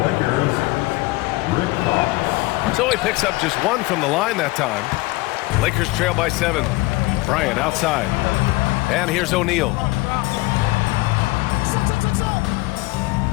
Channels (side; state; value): right; quieter; 21.2 dB